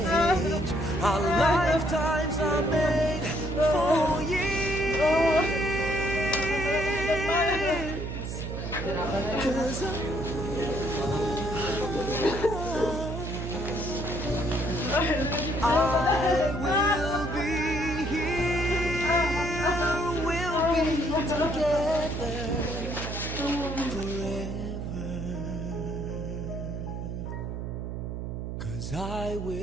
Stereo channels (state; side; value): noise; right; hum, 5 dB below the sound